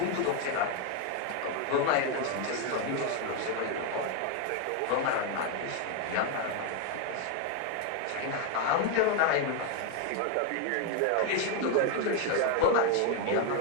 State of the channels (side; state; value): both; different; correlation 0.01